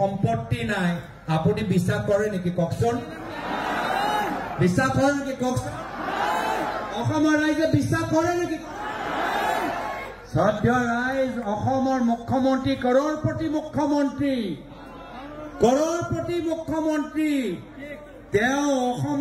নাই আপুনি বিশ্বাস কৰে নেকি কওকচোন বিশ্বাস কৰে নেকি কওকচোন অসমৰ ৰাইজে বিশ্বাস কৰে নেকি শ্ৰদ্ধেয় ৰাইজ অসমৰ মুখ্যমন্ত্ৰী কৰোড়পতি মুখ্যমন্ত্ৰী তেওঁ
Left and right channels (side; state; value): both; identical; correlation 1.00